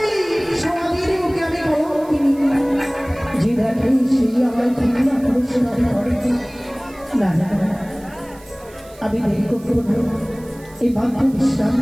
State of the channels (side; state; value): right; noise; hiss, 25 dB below the sound